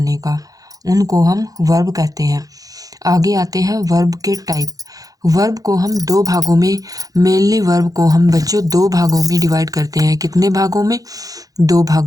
का, उनको हम वर्ब कहते हैं। आगे आते हैं वर्ब के टाइप। वर्ब को हम दो भागों में, मेनली वर्ब को हम बच्चों दो भागों में डिवाइड करते हैं। कितने भागों में? दो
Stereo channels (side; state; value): left; late; 0.17 ms